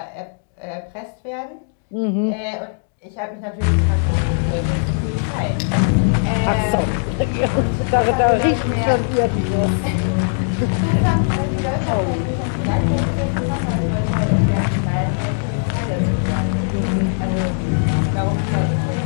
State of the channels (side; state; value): right; silent; digital silence